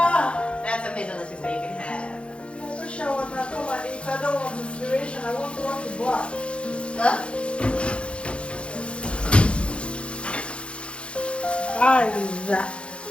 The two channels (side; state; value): right; late; 0.058 ms